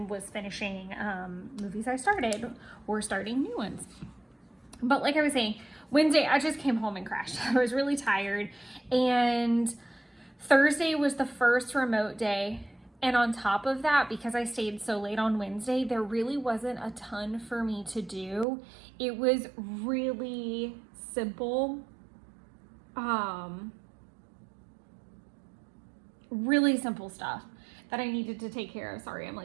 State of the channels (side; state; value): left; drops out; at 18.4 s